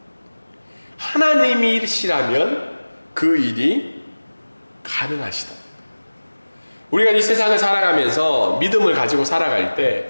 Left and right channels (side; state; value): both; inverted; correlation -1.00